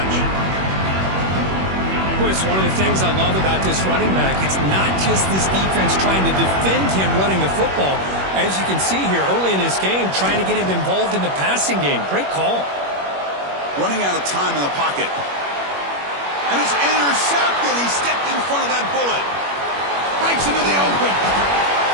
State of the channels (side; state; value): left; late; 21 ms